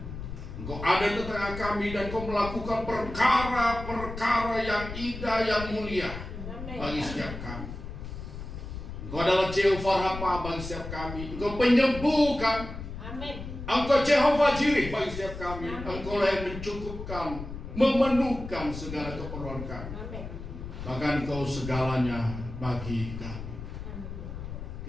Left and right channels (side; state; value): left; noise; rumble, 9 dB below the sound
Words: Engkau ada di tengah kami dan Engkau melakukan perkara-perkara yang indah, yang mulia bagi setiap kami. Engkau adalah Jehovah Rafa bagi setiap kami. Engkau penyembuhkan. Engkau Jehovah Jireh bagi setiap kami. Engkau lah yang mencukupkan, memenuhkan segala keperluan kami. Bahkan Engkau segalanya bagi kami.